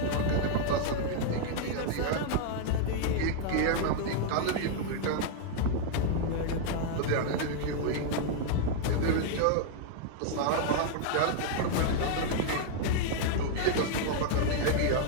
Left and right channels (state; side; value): different; both; correlation 0.00